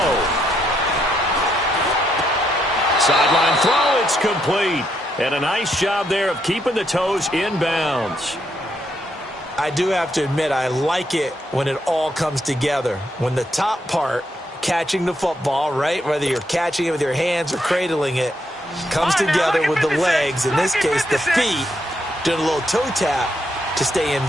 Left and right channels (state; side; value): normal; both; correlation 0.77